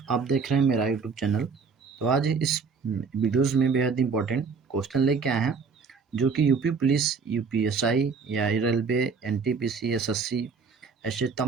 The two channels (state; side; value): quieter; left; 5.4 dB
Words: आप देख रहे हैं मेरा यूट्यूब चैनल। तो आज इस वीडियोज़ में बेहद इंपॉर्टेंट क्वेश्चन लेके आए हैं, जो कि यूपी पुलिस, यूपीएसआई या रेलवे, एनटीपीसी, एसएससी ऐसे